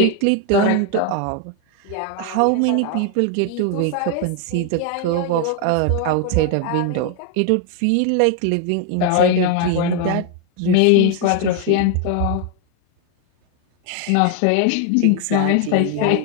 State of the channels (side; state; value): both; different; correlation 0.00